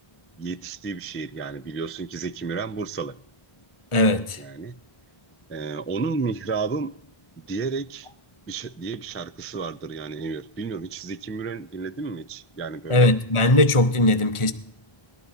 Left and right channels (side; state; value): right; late; 1.4 ms